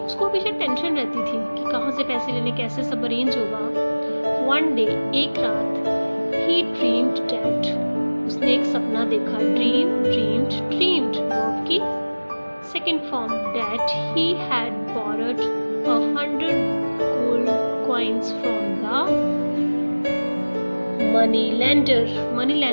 उसको हमेशा टेंशन रहती थी कि कहाँ से पैसे लेने, कैसे सब अरेंज होगा. वन डे, एक रात, he dreamed that, उसने एक सपना देखा. ड्रीम्ड वर्ब की second form, that he had borrowed 100 gold coins from the money lender. money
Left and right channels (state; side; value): inverted; both; correlation -1.00